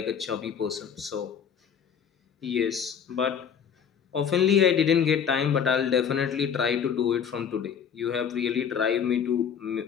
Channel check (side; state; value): right; quieter; 7.6 dB